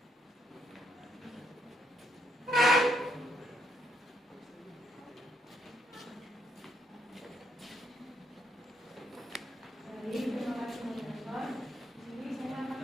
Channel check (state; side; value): normal; both; correlation 0.74